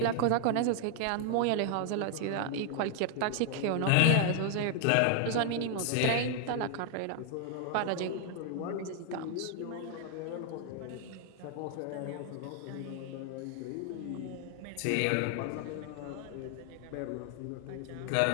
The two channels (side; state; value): both; different; correlation 0.00